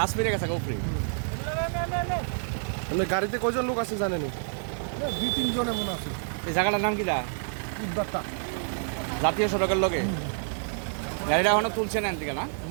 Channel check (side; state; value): left; silent; digital silence